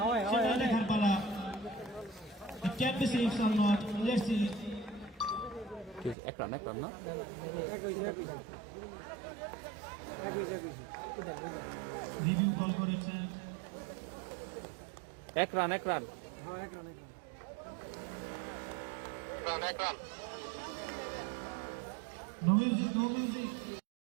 সেটা দেখার পালা। It can be 6 or not. Let's see. এক রান না, রিভিউ কল করেছেন। এক রান। রান, এক run. No music, no music.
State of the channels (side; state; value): left; drops out; at 6.2 s